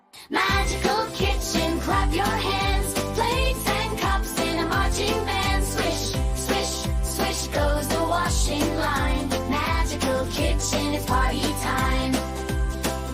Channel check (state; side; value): identical; both; correlation 1.00